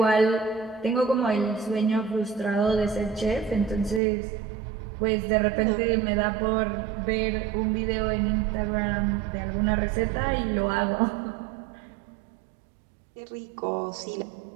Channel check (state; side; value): drops out; left; at 4.0 s